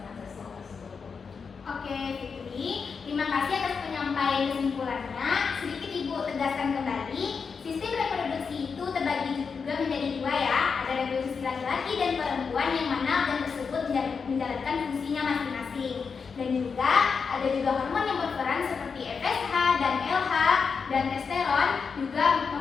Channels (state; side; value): quieter; right; 5.6 dB